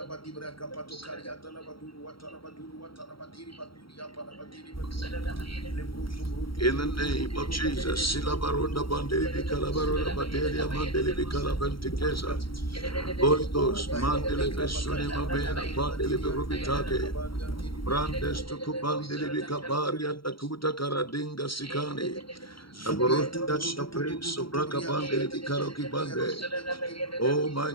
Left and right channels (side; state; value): right; late; 0.74 ms